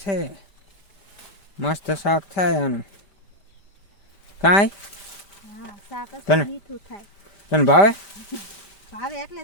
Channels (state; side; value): late; right; 5.1 ms